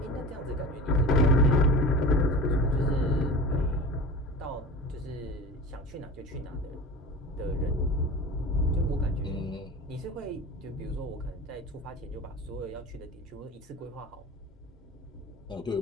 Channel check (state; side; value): normal; both; correlation 0.34